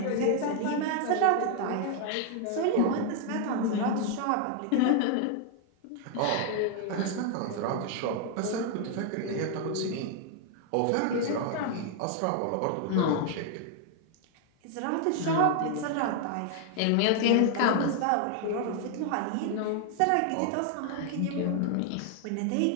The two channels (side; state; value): both; different; correlation 0.00